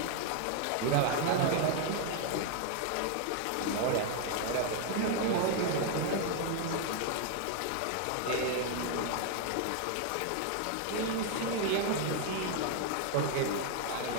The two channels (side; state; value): both; different; correlation 0.00